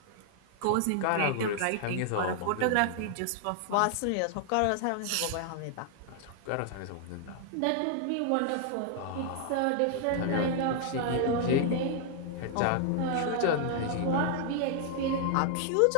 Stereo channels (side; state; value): both; different; correlation 0.00